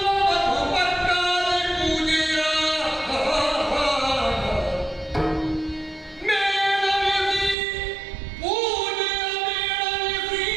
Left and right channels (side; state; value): left; drops out; at 7.6 s